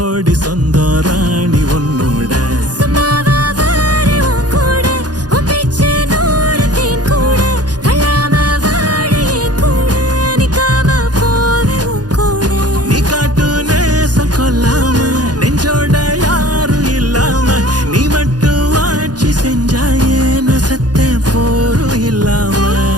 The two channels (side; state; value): left; late; 0.69 ms